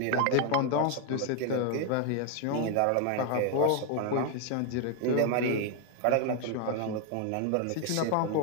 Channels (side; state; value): both; different; correlation 0.00